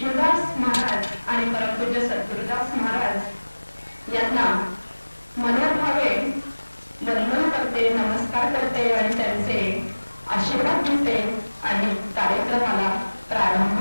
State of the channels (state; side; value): inverted; both; correlation -1.00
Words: महाराज आणि परमपूज्य सद्गुरुदास महाराज यांना मनोभावे वंदन करते, नमस्कार करते आणि त्यांचे आशीर्वाद घेते आणि कार्यक्रमाला